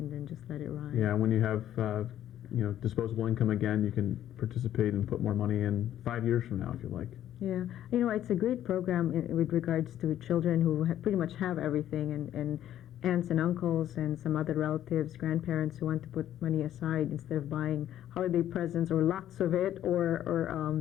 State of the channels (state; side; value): quieter; right; 11.7 dB